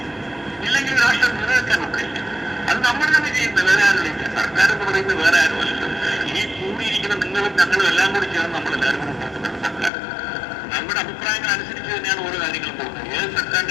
ഇല്ലെങ്കിൽ രാഷ്ട്രം നിലനിൽക്കാൻ ഒക്കില്ല. അത് നമ്മൾ തന്നെ ചെയ്യുന്നത്, വേറെ ആരുമില്ല. സർക്കാർ എന്ന് പറയുന്നത് വേറെ ആരുമല്ലോ. ഈ കൂടിയിരിക്കുന്ന നിങ്ങളും ഞങ്ങളും എല്ലാം കൂടി ചേർന്ന് നമ്മളെല്ലാവരും കൂടി ഉണ്ടാക്കുന്നതാണ് സർക്കാർ. നമ്മുടെ അഭിപ്രായങ്ങൾ അനുസരിച്ച് തന്നെയാണ് ഓരോ കാര്യങ്ങളും പോകുന്നത്. ഏത്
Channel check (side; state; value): right; drops out; at 9.9 s